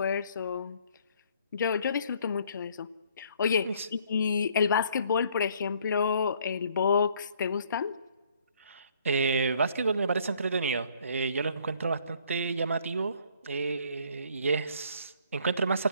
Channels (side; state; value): both; inverted; correlation -0.62